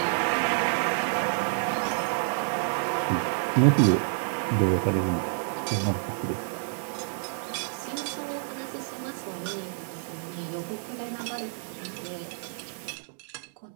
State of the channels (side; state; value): left; silent; 59 dB below the other